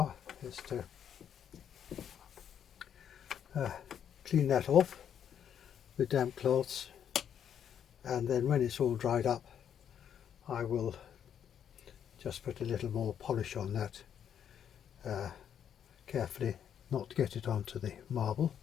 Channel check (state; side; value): quieter; right; 8.9 dB